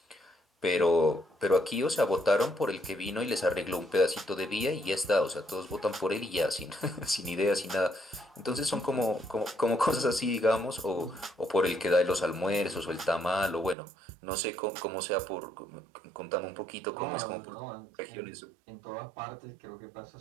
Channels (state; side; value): drops out; left; at 13.8 s